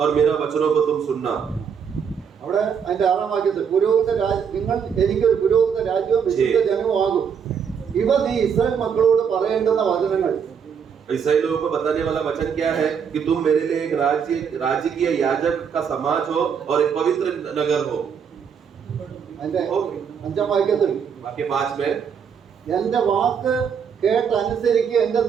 मेरा वचनों को तुम सुनना. അവിടെ അതിന്റെ 6-ാം വാക്യത്തിൽ നിങ്ങൾ എനിക്കൊരു പുരോഹിത രാജ്യവും വിശുദ്ധ ജനവും ആകും. ഇവ നീ ഇസ്രായേൽ മക്കളോട് പറയേണ്ടുന്ന വചനങ്ങൾ. इस्राएल लोगों को बताने वाला वचन क्या है? कि तुम मेरे लिए एक राजकीय याजक का समाज हो और एक पवित्र नगर हो. അതിന്റെ 5-ാം വാക്യത്തിൽ वाक्य 5 में എന്റെ വാക്ക് കേട്ടനുസരിക്കുകയും എന്റെ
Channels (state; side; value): quieter; left; 7.1 dB